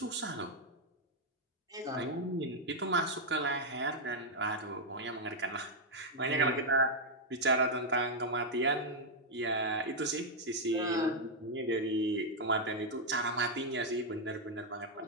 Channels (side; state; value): both; normal; correlation -0.01